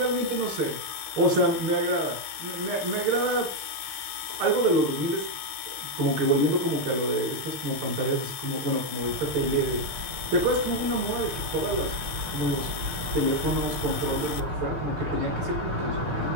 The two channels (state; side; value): late; left; 6.7 ms